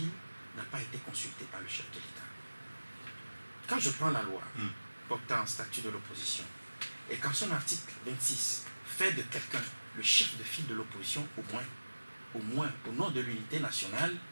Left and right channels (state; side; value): inverted; both; correlation -1.00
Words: n'ont pas été consultées par le chef de l'État. Quand je prends la loi portant statut de l'opposition, et quand son article 26 fait de quelqu'un le chef de file de l'opposition, au moins, au nom de l'unité nationale,